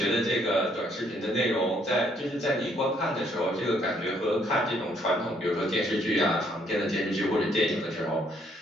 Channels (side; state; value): both; normal; correlation 0.68